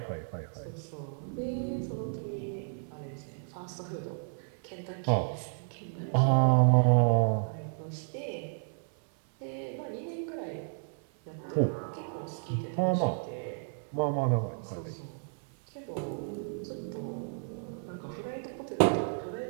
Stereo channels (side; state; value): left; silent; 56 dB below the other